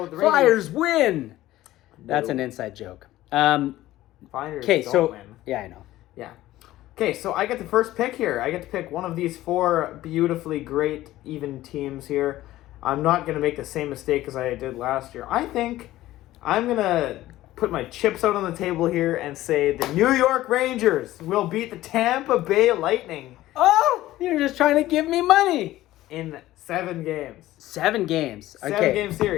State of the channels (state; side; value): quieter; right; 15.5 dB